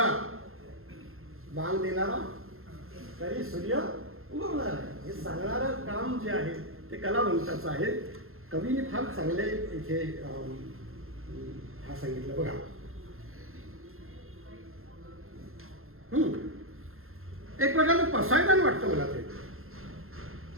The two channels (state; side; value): late; left; 0.61 ms